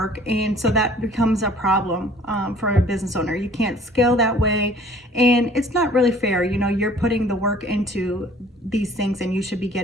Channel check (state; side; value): normal; both; correlation 0.53